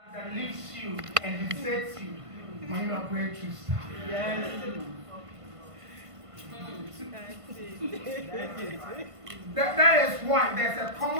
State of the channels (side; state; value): left; late; 1.5 ms